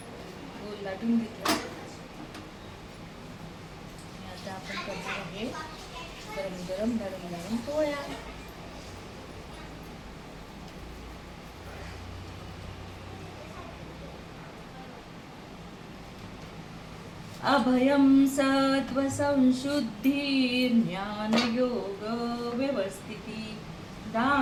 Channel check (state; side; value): identical; both; correlation 1.00